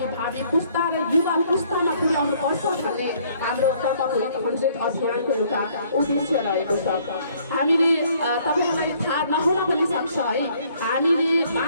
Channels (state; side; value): inverted; both; correlation -0.62